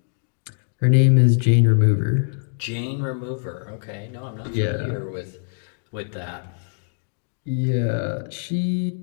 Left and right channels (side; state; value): right; silent; digital silence